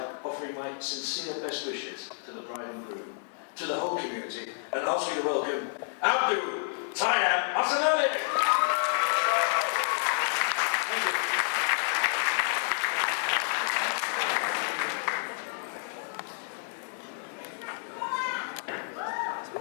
offering my sincere best wishes to the bride and groom, to the whole community, and ask you to welcome Abdul Tayyab Asanali. Thank you.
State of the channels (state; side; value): silent; right; 58 dB below the other